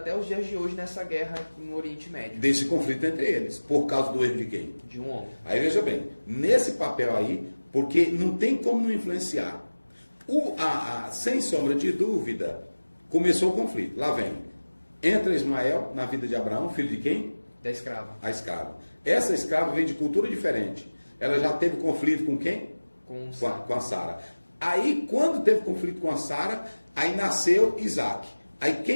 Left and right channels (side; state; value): both; inverted; correlation -1.00